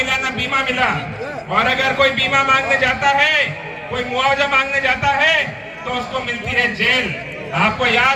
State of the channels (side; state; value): both; identical; correlation 1.00